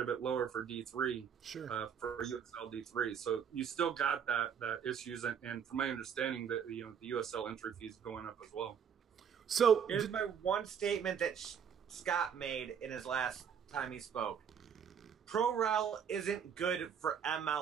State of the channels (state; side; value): quieter; left; 7.7 dB